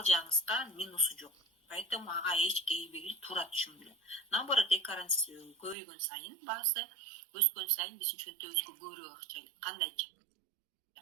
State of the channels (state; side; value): drops out; left; at 5.8 s